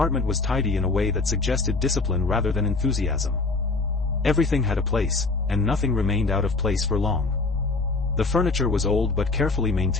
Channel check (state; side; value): quieter; right; 3.7 dB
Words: was tidy in a way that suggested discipline rather than enthusiasm. Everything had a place, and nothing remained out of place for long. The furniture was old but carefully